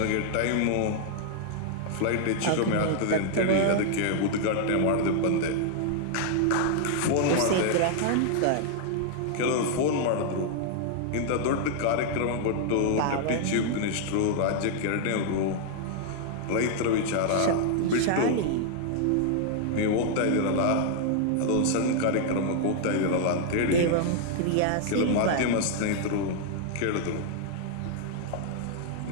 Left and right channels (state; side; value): different; both; correlation 0.00